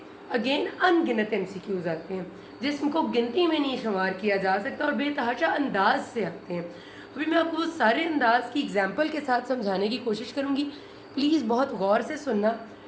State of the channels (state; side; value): identical; both; correlation 1.00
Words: अगेन अनगिनत MCQs आते हैं जिसको गिनती में नहीं शुमार किया जा सकता और बेतहाशा अंदाज से आते हैं। अभी मैं आपको वो सारे अंदाज की एग्जाम्पल के साथ समझाने की कोशिश करूँगी। प्लीज़ बहुत गौर से सुनना